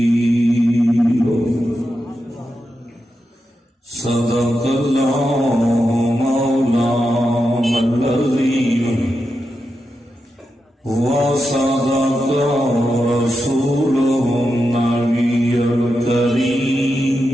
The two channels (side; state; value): both; normal; correlation 0.88